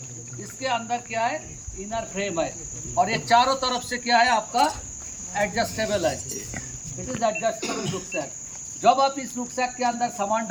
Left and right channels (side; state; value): both; identical; correlation 1.00